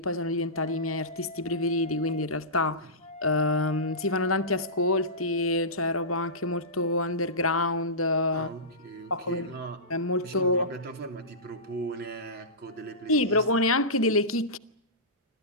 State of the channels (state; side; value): normal; both; correlation -0.19